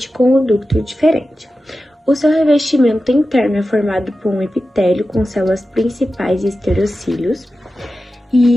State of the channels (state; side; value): normal; both; correlation 0.93